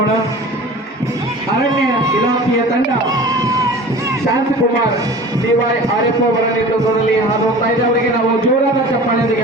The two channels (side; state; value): both; normal; correlation 0.40